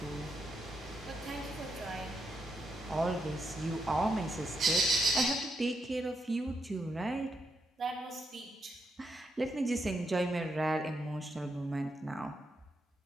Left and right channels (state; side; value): normal; both; correlation 0.81